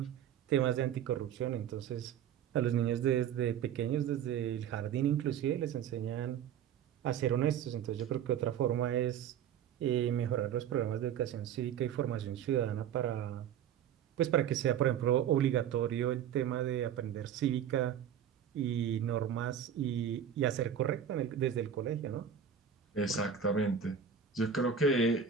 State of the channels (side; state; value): left; quieter; 8.5 dB